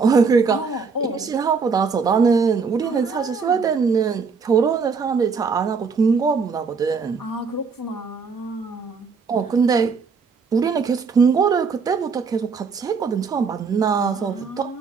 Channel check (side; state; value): left; quieter; 5.2 dB